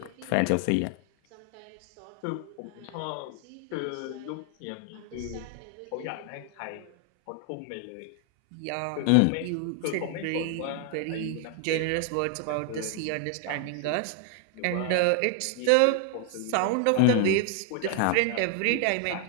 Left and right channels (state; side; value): different; both; correlation 0.00